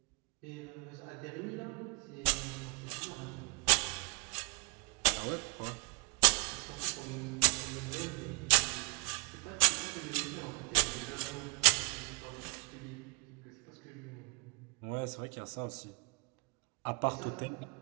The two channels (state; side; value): quieter; left; 33.0 dB